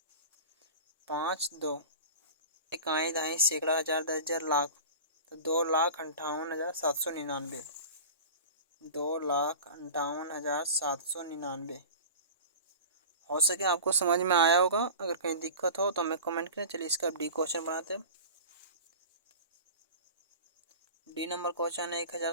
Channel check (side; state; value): both; inverted; correlation -0.35